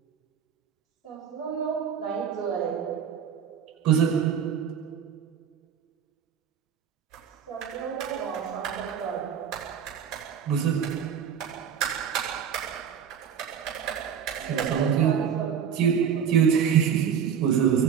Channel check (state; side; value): quieter; left; 7.9 dB